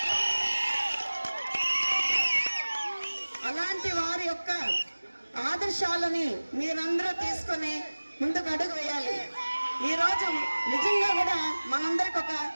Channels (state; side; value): inverted; both; correlation -1.00